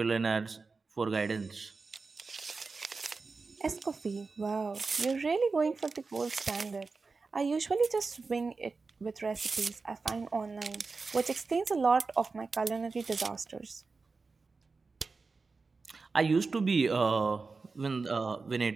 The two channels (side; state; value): left; quieter; 4.2 dB